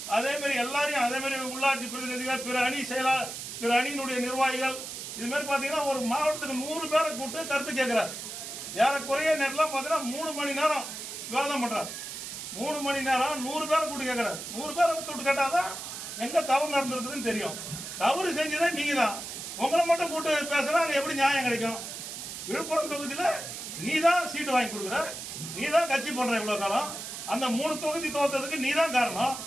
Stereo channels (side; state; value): right; noise; hiss, 8 dB below the sound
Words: அதே மாதிரி எல்லாரையும், அதே மாதிரி உள்ளாட்சி பிரதிநிதிகள், பிற அணியினுடைய நிர்வாகிகள், இது மாதிரி பார்த்தீங்கன்னா ஒரு மாவட்டத்துக்கு 100 பேரை கூப்பிட்டு கருத்து கேட்கிறார். ஏறக்குறைய நேரம்லாம் பார்த்தீங்கன்னா 3 மணி நேரம் விவாதம் பண்றாரு. 3 மணி நேரம் 100 பேரை கூப்பிட்டு கேட்கிறார். 100 பேரை கூப்பிட்டு கேட்டாதான் எங்க தவறு நடந்திருக்குதுன்னு தெரியும். தவறு செஞ்சதே நீங்க தான். உங்களை மட்டும் கூட்டு பேசுனா அங்க எப்படி நியாயம் கிடைக்கும்? விழுப்புரம் தொகுதியில நீ தான் சீட்டு வாங்கி கொடுக்குற, நீ தான் கட்சி பண்ற இவ்வளவு காலம். அந்த 3 தொகுதி தோத்ததுக்கு நீ தான் காரணம்.